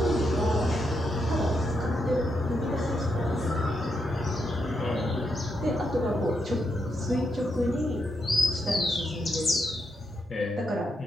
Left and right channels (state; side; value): normal; both; correlation 0.81